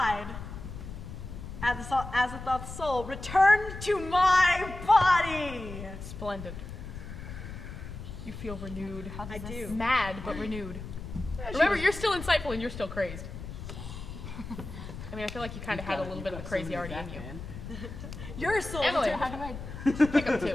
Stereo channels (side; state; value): left; noise; rumble, 10 dB below the sound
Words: Azathoth's soul returned to my body! Splendid. You feel renewed. I do. Mad, but renewed. Remember, you're still insightful and you're still crazed. I mean, I feel like you kind of had a little bit of the crazy already in you. Your soul Emily, returned. how do I pick up 2?